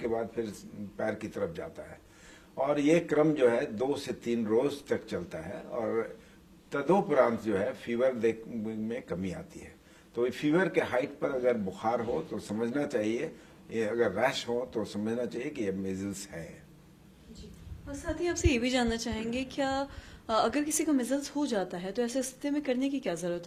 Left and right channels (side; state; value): both; identical; correlation 1.00